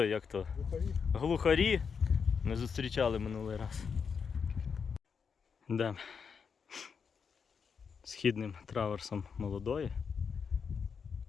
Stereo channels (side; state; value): right; quieter; 6.1 dB